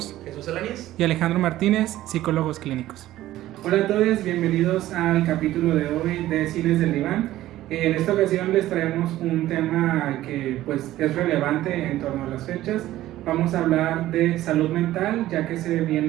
Jesús Alanis y Alejandro Martínez, psicólogos clínicos. Hola a todos, bienvenidos al capítulo de hoy de Cines del Diván. En esta ocasión les traemos un tema que pues es relevante en torno a las fechas. Vamos a hablar de salud mental, ya que se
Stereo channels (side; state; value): left; quieter; 14.8 dB